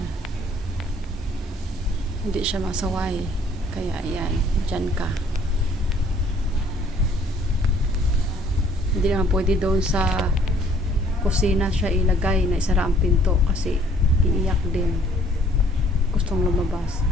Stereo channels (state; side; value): normal; both; correlation 0.59